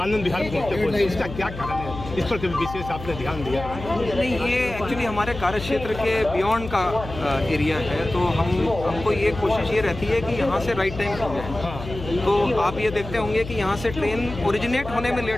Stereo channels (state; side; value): noise; left; hum, 11 dB below the sound